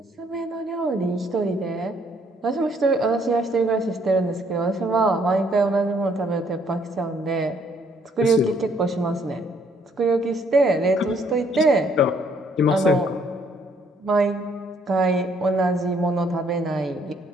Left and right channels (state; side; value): normal; both; correlation 0.66